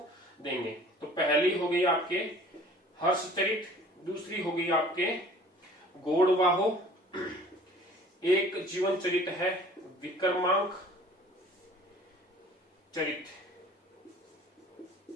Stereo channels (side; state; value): both; normal; correlation 0.49